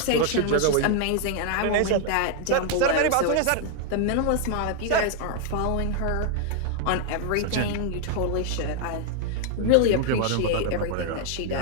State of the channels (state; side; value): different; both; correlation 0.00